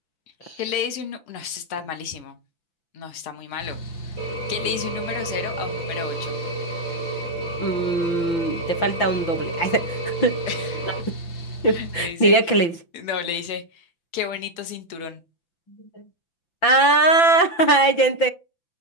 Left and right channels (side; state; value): right; late; 5.9 ms